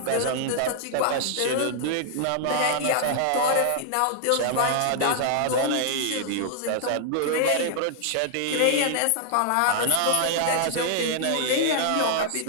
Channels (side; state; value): both; different; correlation -0.01